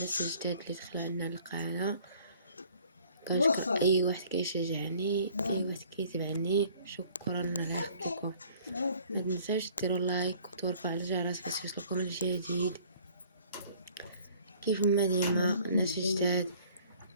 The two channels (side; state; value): both; inverted; correlation -0.55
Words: الجداد اللي دخلوا عندنا القناه. كنشكر اي واحد كيشجعني، اي واحد كيتبعني. شكرا على خدمتكم. ما تنساوش ديروا لايك وترفعوا على الجرس باش يوصلكم الجديد كيف ما ديما الناس الجداد.